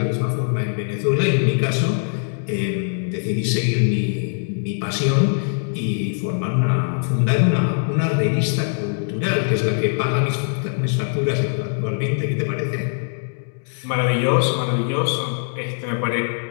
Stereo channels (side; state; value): right; silent; 62 dB below the other